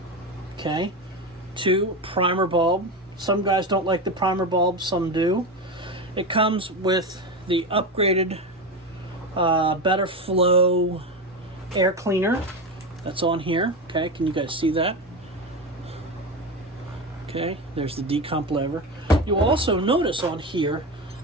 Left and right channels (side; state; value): both; normal; correlation 0.19